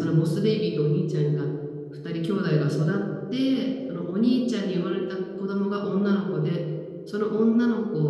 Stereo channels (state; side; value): identical; both; correlation 1.00